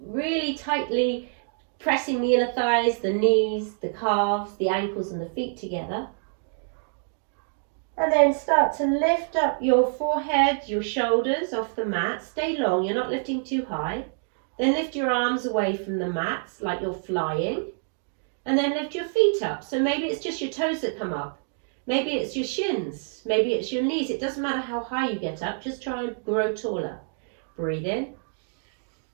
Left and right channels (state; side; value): silent; left; digital silence